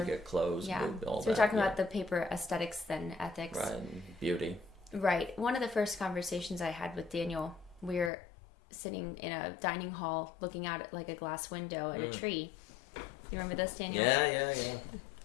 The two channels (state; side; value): drops out; right; at 8.1 s